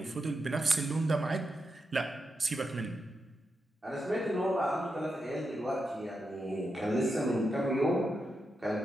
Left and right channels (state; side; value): normal; both; correlation 0.86